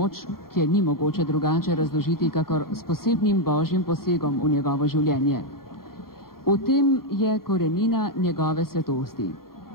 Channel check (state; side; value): late; right; 0.93 ms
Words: ki je ni mogoče drugače razložiti, kakor s posebnim božjim posegom v njegovo življenje. V tem je korenina njegove svetosti.